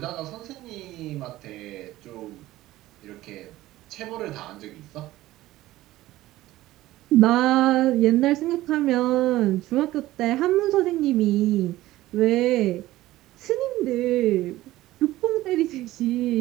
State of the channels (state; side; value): quieter; left; 16.3 dB